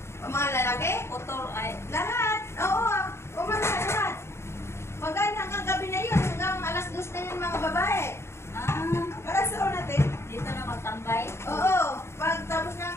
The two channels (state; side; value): late; right; 0.13 ms